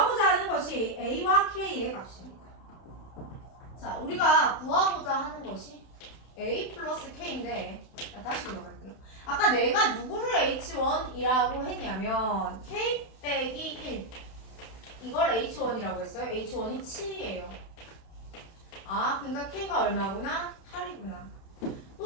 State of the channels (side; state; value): right; late; 31 ms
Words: 하는 것이 A와 K의 값입니다. 자, 우리가 구하고자 하는 것이 A 플러스 K인데 다시 돌아갈게요. 아까 내가 누구를 H1이라고 했냐면 K 빼기 1 이걸 H1이라고 했어요. H1이 7이에요. 아, 그러니까 K가 얼마구나? 8이구나.